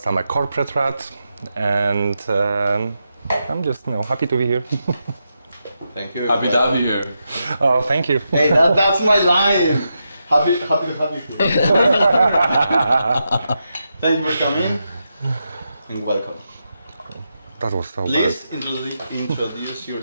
I'm a corporate rat, and I'm just happy to be here. Thank you. Happy to have you here. Oh, thank you. Hey, that's my line. Happy to have you here. Thank you for coming and welcome. That was so Please introduce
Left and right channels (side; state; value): both; inverted; correlation -0.86